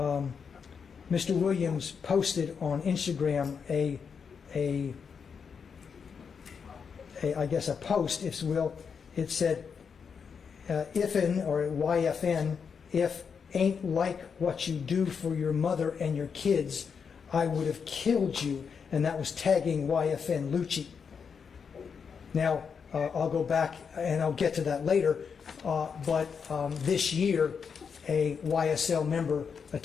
Mr. Williams posted on Instagram I guess a post, if you will. It said, "If'n or YFN, if ain't like what you do for your mother and your kids, I would have killed you," and that was tagging YFN Lucci. Now, I'll go back and I'll get to that later, but this year, a YSL member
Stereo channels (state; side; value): quieter; right; 6.3 dB